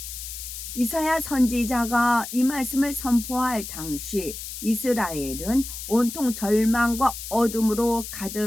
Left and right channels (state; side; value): noise; left; hiss, 9 dB below the sound